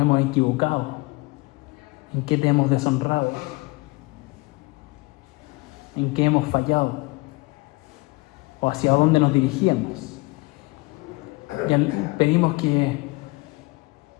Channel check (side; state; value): right; quieter; 24.9 dB